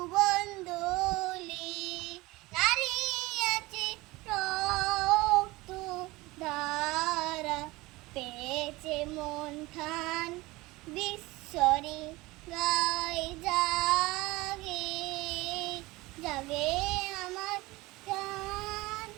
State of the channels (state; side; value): quieter; left; 21.1 dB